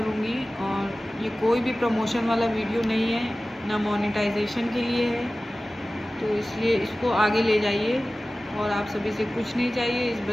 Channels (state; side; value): normal; both; correlation 0.96